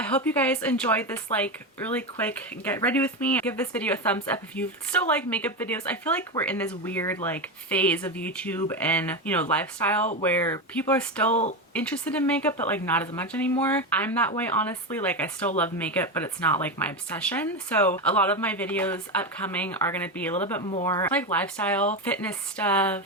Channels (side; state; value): both; normal; correlation 0.15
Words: hope you guys enjoyed this like really quick get ready with me. Give this video a thumbs up if you still like makeup videos. I feel like we're in this weird like phase of YouTube and, you know, lifestyle where people are still interested in makeup, but like not as much anymore. I'm that way, honestly. Like I still love makeup, but it's not like my obsession. So a lot of my videos upcoming are going to be a little bit more like lifestyle, fitness